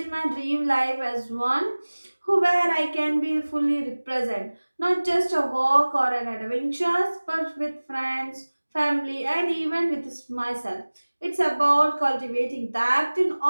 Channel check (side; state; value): both; inverted; correlation -1.00